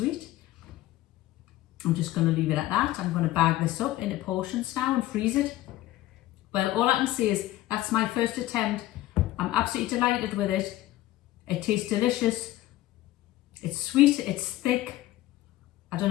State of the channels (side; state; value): right; quieter; 15.8 dB